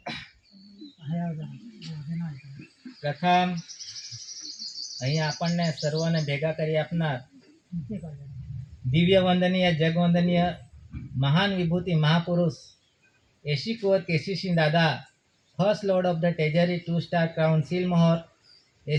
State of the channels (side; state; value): both; identical; correlation 1.00